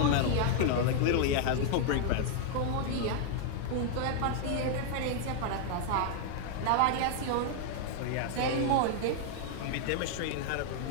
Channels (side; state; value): both; different; correlation 0.00